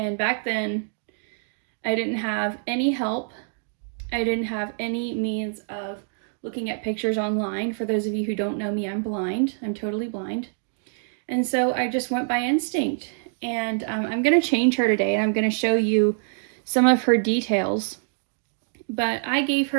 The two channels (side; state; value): left; silent; digital silence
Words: back then, I didn't have any help. I didn't have any means of looking at pictures online. For those of you who don't know me, I'm blind. I'm totally blind. And so I just went by instinct. And I'm going to change her today, and I'm going to show you some of her details. But I gave